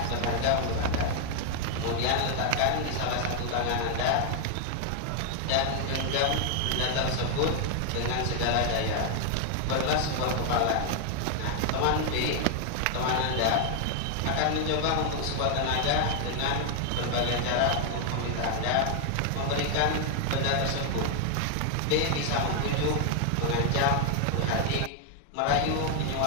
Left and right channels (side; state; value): both; different; correlation 0.00